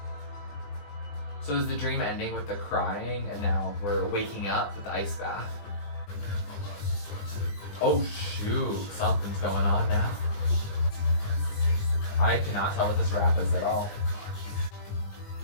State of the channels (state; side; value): late; right; 20 ms